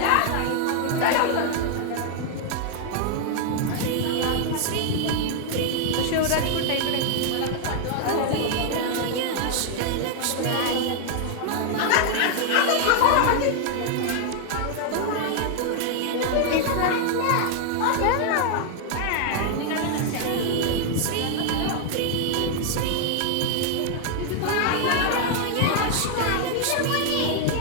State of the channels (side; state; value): both; different; correlation 0.00